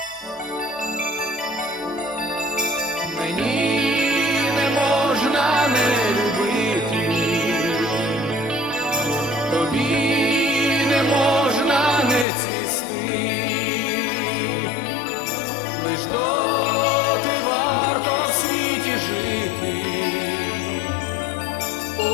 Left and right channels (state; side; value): drops out; right; at 12.2 s